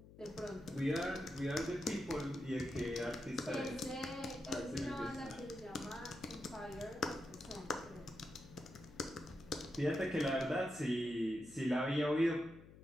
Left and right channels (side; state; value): left; noise; hum, 19 dB below the sound